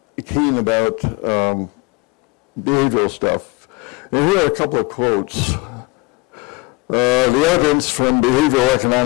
keen about behavioral stuff. And here are a couple of quotes. The evidence from behavioral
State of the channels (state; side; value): quieter; right; 25.6 dB